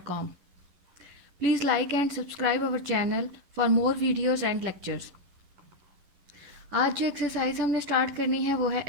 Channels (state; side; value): late; left; 11 ms